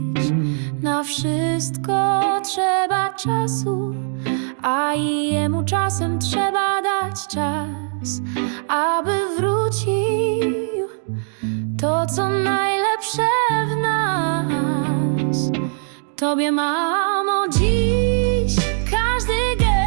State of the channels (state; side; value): silent; left; 65 dB below the other